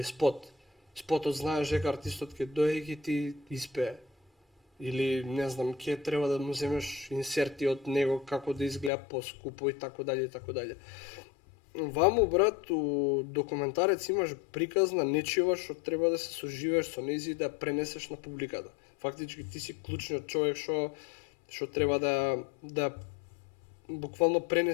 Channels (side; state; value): right; drops out; at 8.9 s